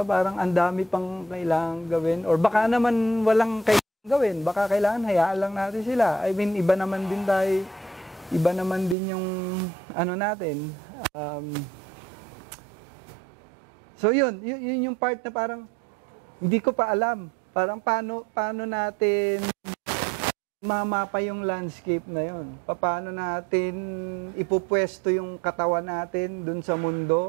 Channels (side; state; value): left; drops out; at 9.0 s